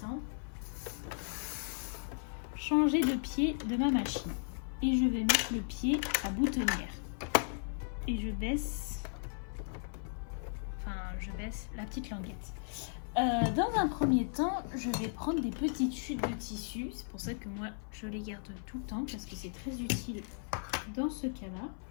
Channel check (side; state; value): right; silent; 54 dB below the other